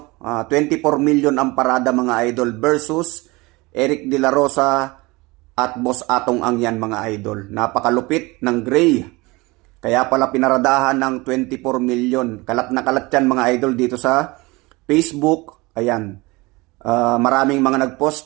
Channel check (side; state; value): left; quieter; 23.4 dB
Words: 24 million ang parada mga idol versus Eric De La Rosa at Boss Atong Ang yan mga idol. Napakalupit ng Gray. Kaya pala pinaradahan ng 24 million. Kalat na kalat yan mga idol dito sa Facebook. Ayan. Maraming mga